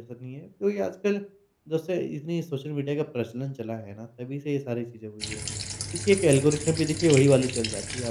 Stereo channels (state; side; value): identical; both; correlation 1.00